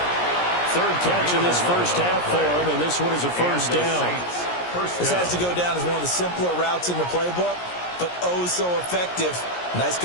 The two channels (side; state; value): right; late; 17 ms